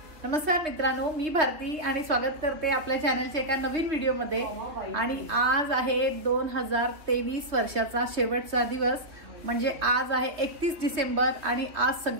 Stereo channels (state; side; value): late; left; 3.0 ms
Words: नमस्कार मित्रांनो, मी भारती आणि स्वागत करते आपल्या चॅनलच्या एका नवीन व्हिडिओमध्ये। आणि आज आहे 2023 वर्षाचा शेवटचा दिवस, म्हणजे आज आहे 31 डिसेंबर आणि आज